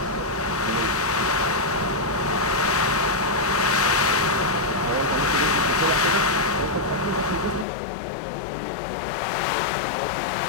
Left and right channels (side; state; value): right; drops out; at 7.7 s